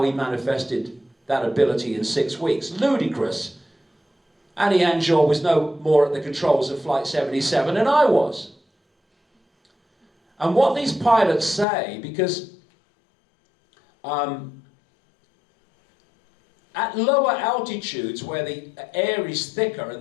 he manifested that ability in 6 weeks. Ludicrous. Hani Hanjour was no more at the controls of Flight 77 than I was. And what these pilots say, because at lower altitudes where the air is thicker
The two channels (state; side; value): drops out; right; at 11.7 s